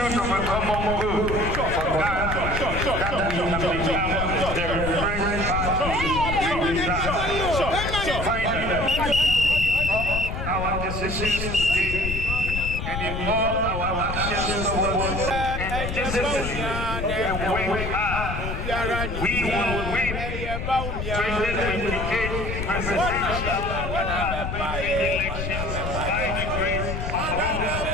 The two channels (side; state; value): left; noise; rumble, 4 dB below the sound